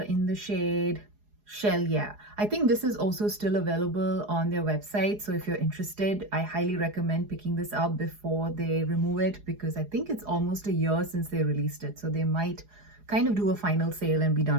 in the shade Shell. Yeah, I think this is also still available on their website. So if you're interested, I highly recommend picking this up before they remove it, because I think it's almost a year since they released it. So they might kind of do a final sale and be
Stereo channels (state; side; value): late; left; 4.8 ms